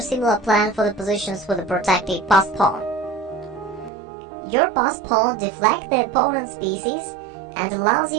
plan for the positions with a protected passed pawn. Your passed pawn deflects the opponent's pieces and allows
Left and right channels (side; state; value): left; drops out; at 3.9 s